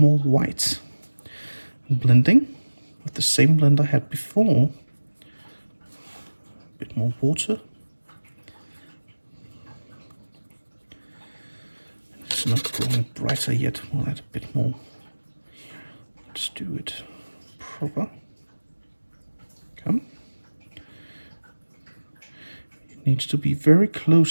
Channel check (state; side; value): inverted; both; correlation -1.00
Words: more white. Blending with the same blend I had before. A bit more water. It's not growing brighter yet. We'll add a bit more. Let's do it proper. Come. It needs to be very